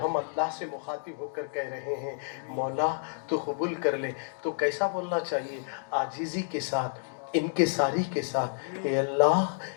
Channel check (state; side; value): silent; right; 58 dB below the other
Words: हम अल्लाह से मुखातिब होकर कह रहे हैं मौला तो कबूल कर ले, तो कैसा बोलना चाहिए? आजीज़ी के साथ, इनके सारी के साथ, ए